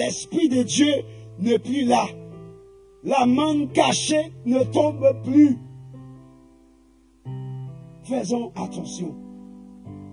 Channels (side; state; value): both; identical; correlation 1.00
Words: de Dieu n'est plus là. La manne cachée ne tombe plus. Faisons attention.